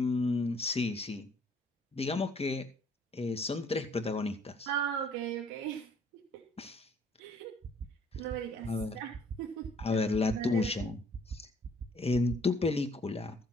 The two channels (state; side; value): normal; both; correlation 0.60